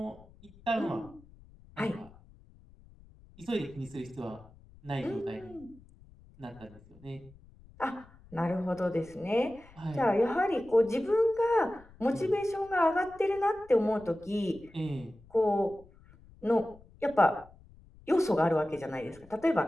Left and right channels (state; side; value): noise; left; rumble, 24 dB below the sound